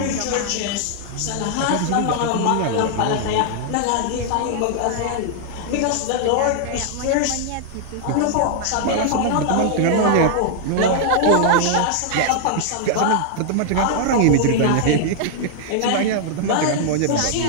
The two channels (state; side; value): different; both; correlation 0.00